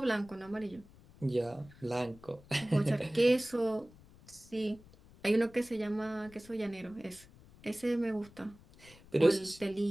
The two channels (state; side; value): noise; left; rumble, 23 dB below the sound